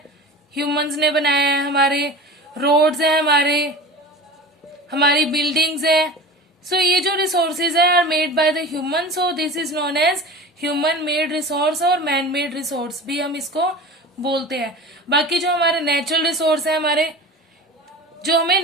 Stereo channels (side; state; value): both; normal; correlation 0.33